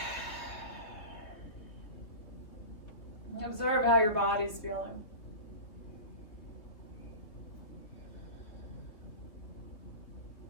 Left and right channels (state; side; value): late; right; 3.2 ms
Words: Observe how your body's feeling.